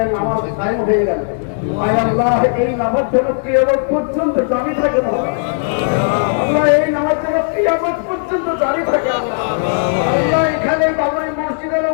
নামাজ কায়েম হয়ে গেল আয় আল্লাহ এই নামাজ যেন কিয়ামত পর্যন্ত জারি থাকে না আল্লাহ এই নামাজ যেন কিয়ামত পর্যন্ত জারি থাকে আল্লাহ এখানে বাবরি মসজিদের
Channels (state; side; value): silent; right; 69 dB below the other